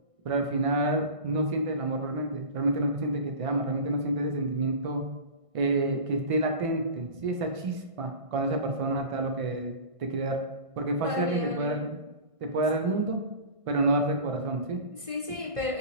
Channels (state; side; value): late; left; 1.6 ms